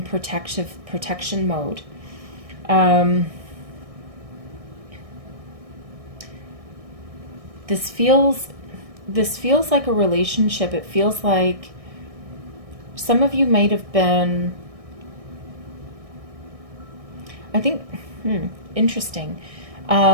protection mode. This feels like a relationship. It feels like some of you might have been, I think, interesting.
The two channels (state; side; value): late; left; 1.6 ms